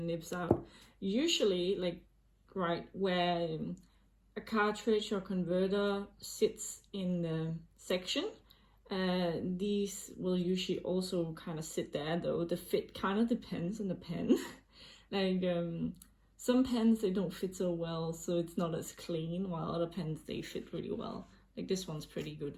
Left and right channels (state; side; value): identical; both; correlation 1.00